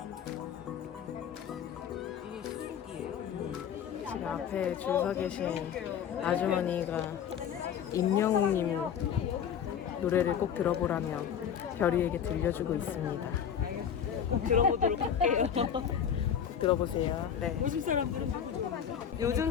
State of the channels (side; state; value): right; quieter; 8.3 dB